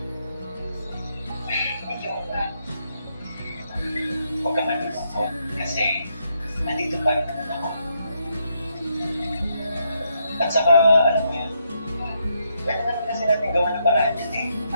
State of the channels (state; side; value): inverted; both; correlation -0.77